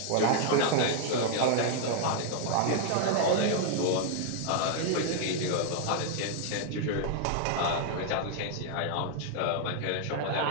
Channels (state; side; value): different; both; correlation 0.00